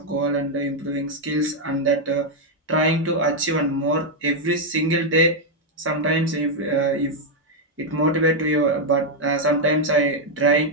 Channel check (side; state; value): both; normal; correlation 0.01